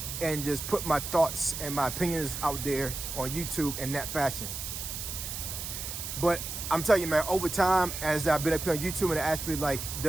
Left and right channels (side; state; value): right; noise; hiss, 6 dB below the sound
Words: and just put my thoughts and my opinions out there on YouTube in that fashion. But I'm telling you, man, over time, as I've been up here on YouTube and I actually